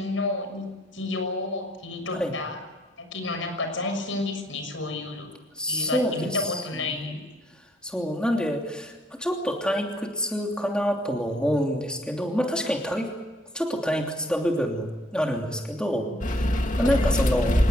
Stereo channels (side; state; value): both; normal; correlation 0.66